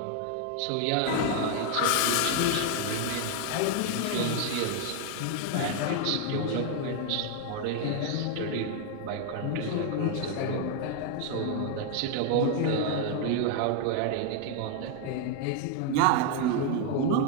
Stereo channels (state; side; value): different; both; correlation 0.00